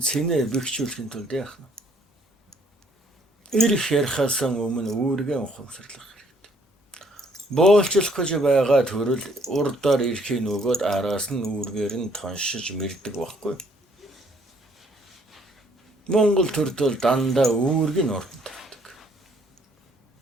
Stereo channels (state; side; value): normal; both; correlation 0.64